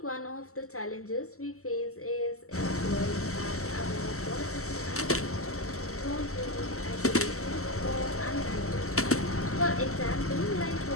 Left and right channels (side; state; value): right; late; 0.63 ms